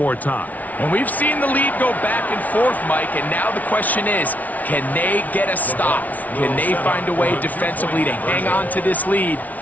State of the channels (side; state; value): right; late; 0.074 ms